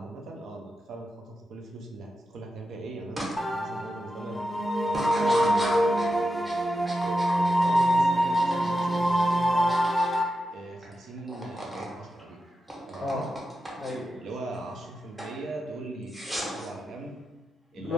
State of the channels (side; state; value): both; normal; correlation 0.89